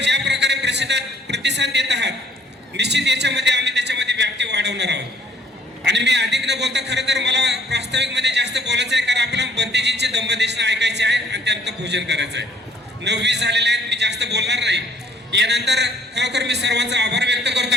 ज्या प्रकारे प्रतिसाद देत आहात निश्चित याच्यामध्ये आम्ही त्याच्यामध्ये व्याप्ती वाढवणार आहोत. आणि मी अधिक न बोलता खरं तर मला प्रास्ताविकमध्ये जास्त बोलायचं आहे कारण आपल्याला बंतेजींचे दंबदेशना ऐकायचे आहे आणि त्यानंतर भोजन करायचं आहे. 9:20 झालेले आहेत, मी जास्त बोलणार नाही. यानंतर खरोखर मी सर्वांचा आभार व्यक्त करतो.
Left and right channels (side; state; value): both; normal; correlation 0.61